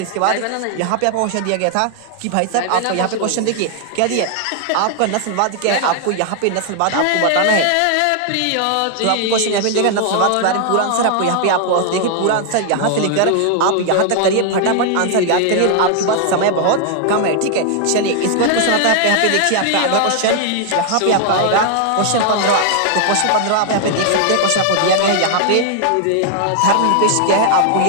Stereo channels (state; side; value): different; both; correlation 0.00